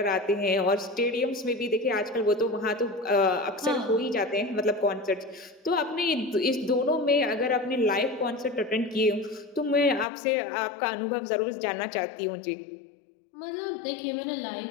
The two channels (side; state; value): right; drops out; at 10.1 s